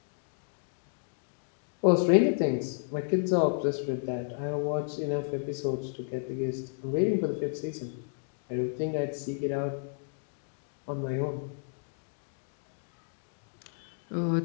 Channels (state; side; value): silent; right; digital silence